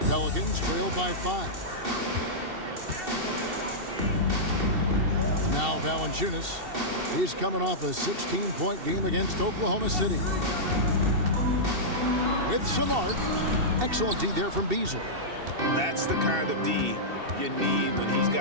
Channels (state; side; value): late; left; 2.7 ms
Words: Pelicans trail by 5. Now Valanciunas. He's coming off a 16-point game against Oklahoma City. With some arc. Excellent D there from Beasley. That's the kind of D you need when he's